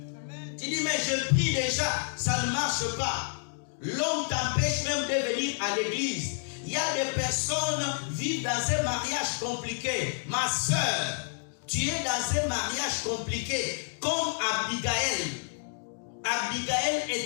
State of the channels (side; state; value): right; silent; digital silence